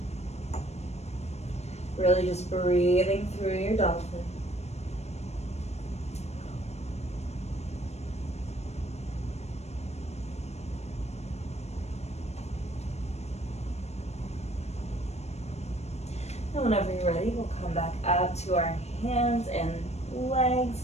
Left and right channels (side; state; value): right; late; 0.31 ms